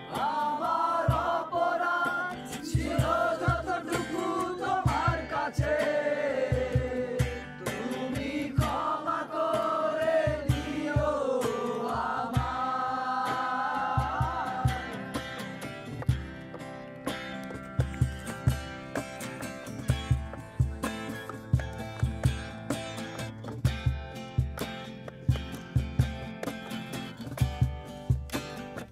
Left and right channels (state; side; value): identical; both; correlation 1.00